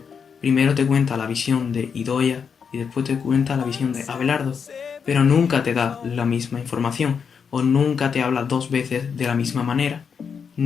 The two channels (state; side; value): quieter; right; 6.5 dB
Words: primero te cuenta la visión de Idoia y después te cuenta la visión de Abelardo, pero nunca te da la misma información o nunca te habla dos veces de la misma manera,